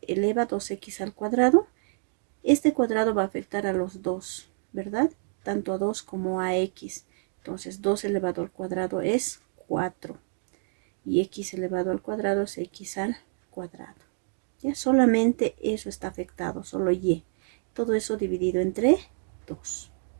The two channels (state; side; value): silent; left; digital silence